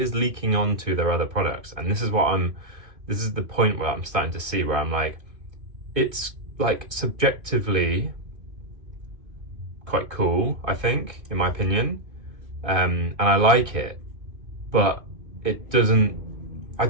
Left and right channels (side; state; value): left; late; 2.5 ms